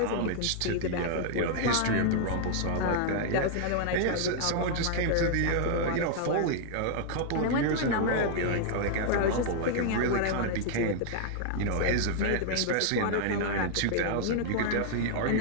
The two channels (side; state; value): both; different; correlation -0.01